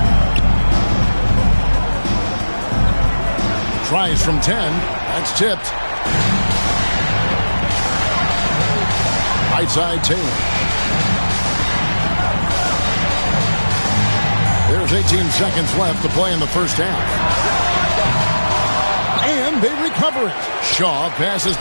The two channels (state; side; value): inverted; both; correlation -1.00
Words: Tries from 10. That's tipped. Right side, Taylor. There's 18 seconds left to play in the first half. And they recover it. Shaw passes